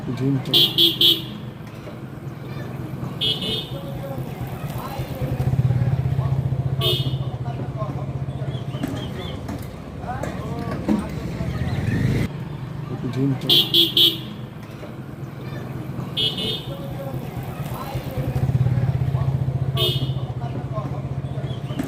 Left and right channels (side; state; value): both; identical; correlation 1.00